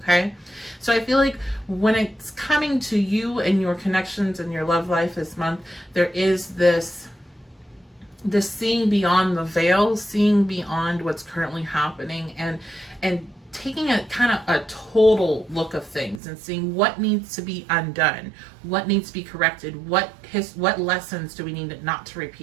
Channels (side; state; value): left; drops out; at 16.2 s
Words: Okay, so I feel like when it's coming to you and your connections and your love life this month, there is this the seeing beyond the veil, seeing beyond what's currently happening, and taking a kind of a total look of things and seeing what needs to be undone, what needs to be corrected, what lessons do we need not to